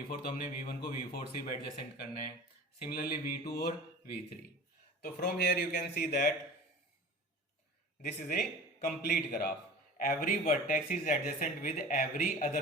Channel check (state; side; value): normal; both; correlation 0.38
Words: तो हमने V1 को V4 से भी एडजेसेंट करना है, सिमिलरली V2 और V3। तो from here you can see that this is a complete graph, every vertex is adjacent with every other